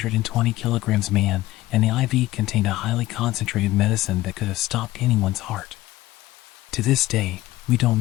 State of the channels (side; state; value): right; quieter; 16.8 dB